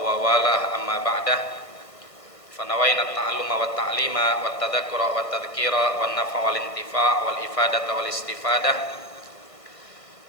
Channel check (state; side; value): late; right; 1.5 ms